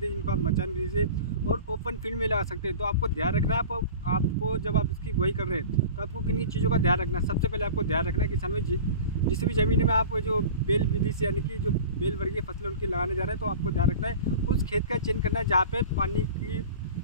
जिनको आप मचान विधि से और ओपन फील्ड में लगा सकते हैं। तो आपको ध्यान रखना है, आपको जब आप इसकी बुआई कर रहे हैं तो आपको किन चीज़ों का ध्यान रखना है। सबसे पहले आपको ध्यान रखना है किसान में जिस भी ज़मीन में आप जो बेल विधि से यानी कि जो बेल वर्गीय फसलें उनकी लगाने जा रहे हैं, तो आपको ध्यान रखना है उस खेत का चयन करना है जहाँ पे पानी की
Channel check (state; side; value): inverted; both; correlation -0.37